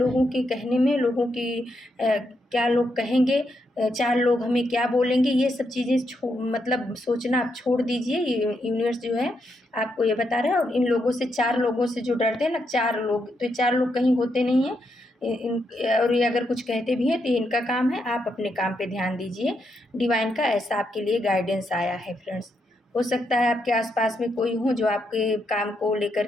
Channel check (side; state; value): both; normal; correlation 0.80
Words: के कहने में, लोगों की क्या लोग कहेंगे, चार लोग हमें क्या बोलेंगे, ये सब चीज़ें मतलब सोचना आप छोड़ दीजिए। यूनिवर्स जो है आपको ये बता रहा है। और इन लोगों से, चार लोगों से जो डरते हैं ना, चार लोग, तो ये चार लोग कहीं होते नहीं हैं। और ये अगर कुछ कहते भी हैं तो इनका काम है, आप अपने काम पे ध्यान दीजिए। डिवाइन का ऐसा आपके लिए गाइडेंस आया है फ्रेंड्स। हो सकता है आपके आसपास में कोई हो जो आपके काम को लेकर